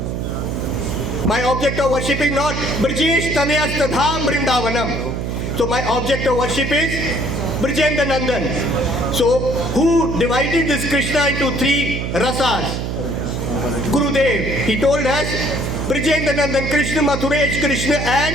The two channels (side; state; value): right; noise; hum, 3 dB below the sound